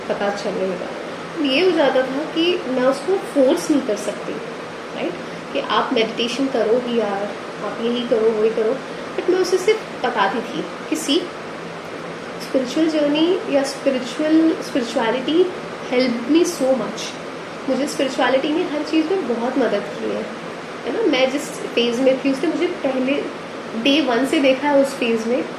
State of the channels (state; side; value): identical; both; correlation 1.00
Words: पता चलने लगा। ये हो जाता था कि मैं उसको फोर्स नहीं कर सकती, राइट, कि आप मेडिटेशन करो ही यार, आप यही करो वही करो। बट मैं उसे सिर्फ बताती थी कि सी, स्पिरिचुअल जर्नी या spirituality help me so much. मुझे स्पिरिचुअलिटी ने हर चीज़ में बहुत मदद की है ना। मैं जिस फेज़ में थी उसने मुझे पहले डे 1 से देखा है। उस फेज़ में